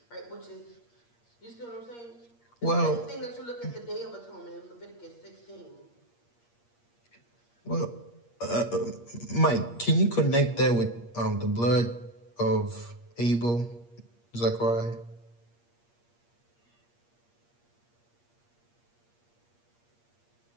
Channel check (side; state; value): right; late; 8.5 ms